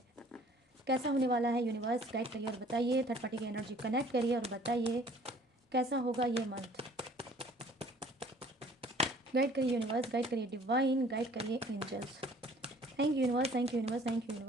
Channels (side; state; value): both; normal; correlation 0.54